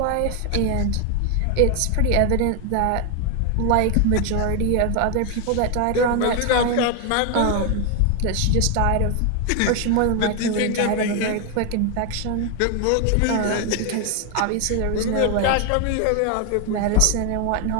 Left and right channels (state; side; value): different; both; correlation 0.01